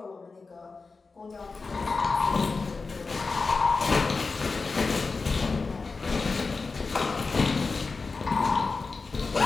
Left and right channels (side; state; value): right; quieter; 4.2 dB